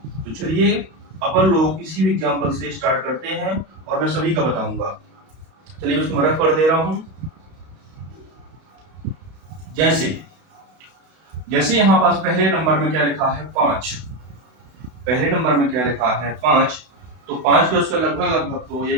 तो चलिए अपन लोग किसी भी एग्जांपल से स्टार्ट करते हैं और मैं सभी का बताऊंगा। चलिए उसको रफ कर दे रहा हूं। जैसे यहाँ पास पहले नंबर में क्या लिखा है 5, पहले नंबर में क्या लिखा है 5, तो 5 को उसका लगभग तो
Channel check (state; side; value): late; left; 32 ms